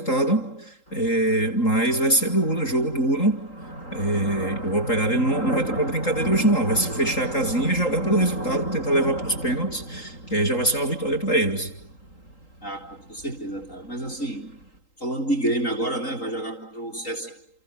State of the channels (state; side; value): late; right; 3.8 ms